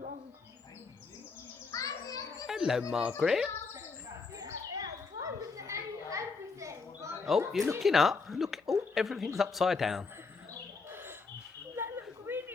Hello, Margaret. Oh, you're looking up. Look. Oh, everything's upside down. That looks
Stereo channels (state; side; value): quieter; right; 4.5 dB